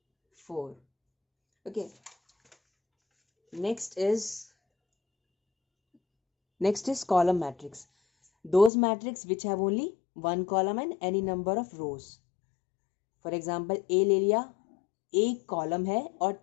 4। Okay, next is column matrix. Those matrix which have only one column and any number of rows. For example A ले लिया, एक कॉलम है और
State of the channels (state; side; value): drops out; right; at 8.7 s